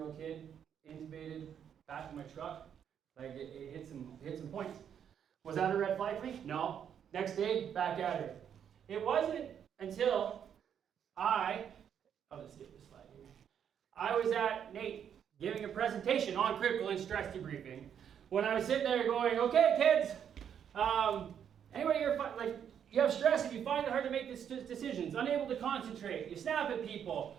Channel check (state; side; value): quieter; left; 8.6 dB